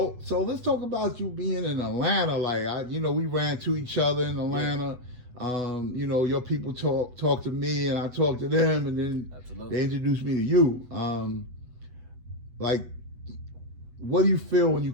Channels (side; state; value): left; late; 8.1 ms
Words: let's talk about you being in Atlanta. Like we ran to each other in Atlanta. Your people talk to me, and I talk to them, and then they introduced me to you. What do you feel when you